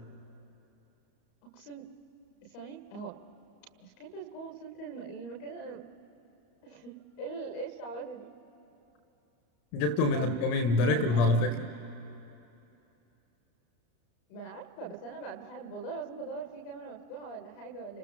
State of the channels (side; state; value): right; late; 34 ms